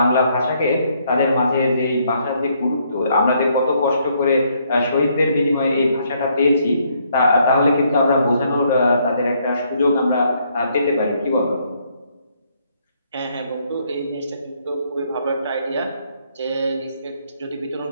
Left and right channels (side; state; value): both; inverted; correlation -0.70